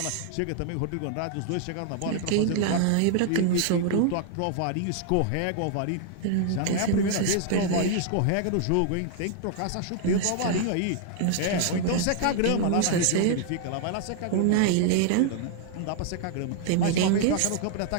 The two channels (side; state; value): both; different; correlation 0.00